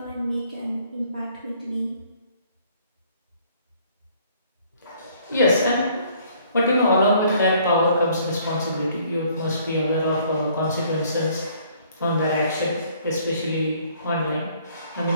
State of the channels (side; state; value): both; inverted; correlation -0.60